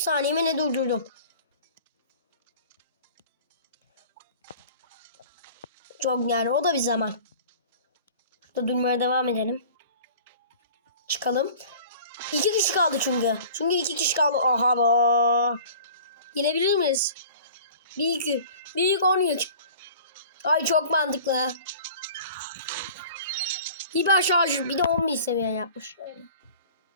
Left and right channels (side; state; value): both; inverted; correlation -0.45